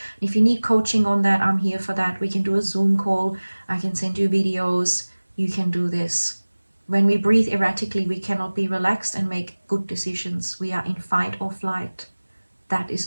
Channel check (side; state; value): both; inverted; correlation -1.00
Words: If you need coaching on that, I'm here for that. We can do a Zoom call. I can send you videos. You can do this. When we breathe erratically, we cannot be relaxed and make good decisions. We are in fight or flight. That